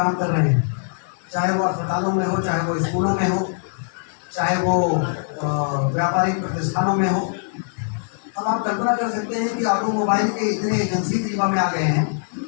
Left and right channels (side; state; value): right; silent; 55 dB below the other